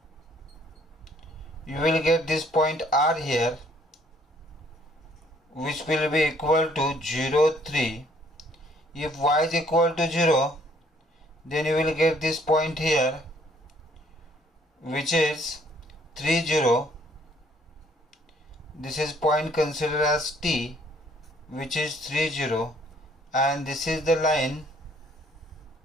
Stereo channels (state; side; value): normal; both; correlation 0.63